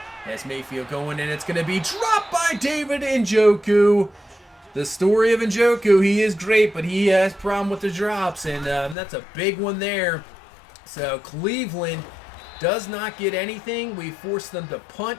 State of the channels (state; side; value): drops out; right; at 9.0 s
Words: As Mayfield going, and it's going to be dropped by David Njoku. The story of Njoku, he is great, but he has a problem with the drops, and that's a big one there. So Cleveland does not get anything. We force them to